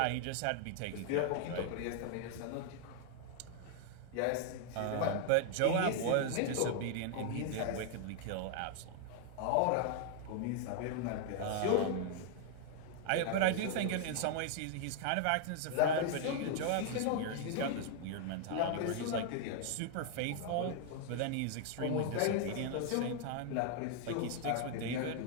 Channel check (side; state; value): both; different; correlation 0.00